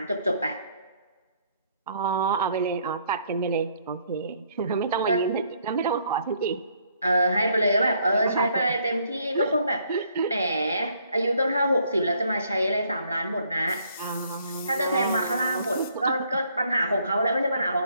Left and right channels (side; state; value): both; inverted; correlation -0.66